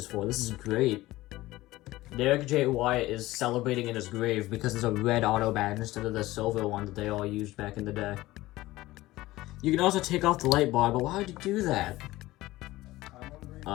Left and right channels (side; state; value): right; quieter; 17.7 dB